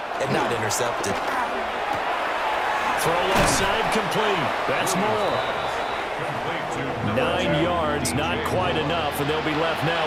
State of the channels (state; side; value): identical; both; correlation 1.00